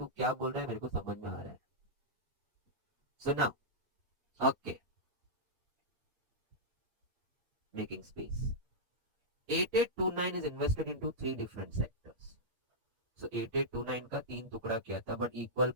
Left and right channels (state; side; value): late; left; 8.5 ms